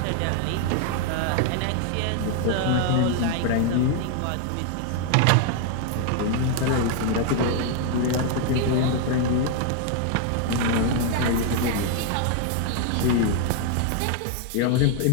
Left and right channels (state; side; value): different; both; correlation 0.00